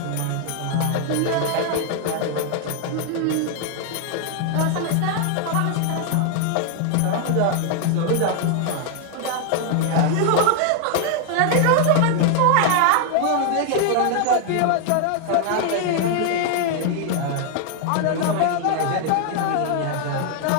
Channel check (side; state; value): both; different; correlation 0.00